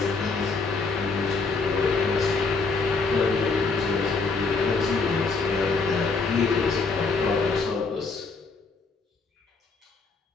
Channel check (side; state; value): right; quieter; 4.2 dB